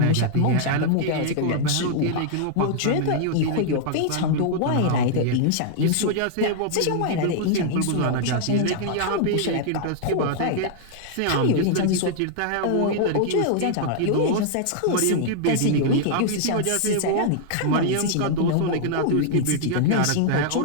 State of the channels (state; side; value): different; both; correlation -0.01